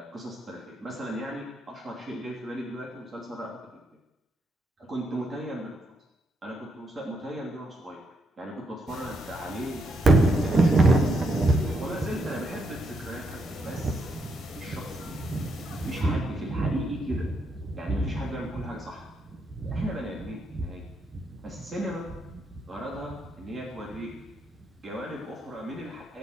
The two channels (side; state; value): both; normal; correlation 0.78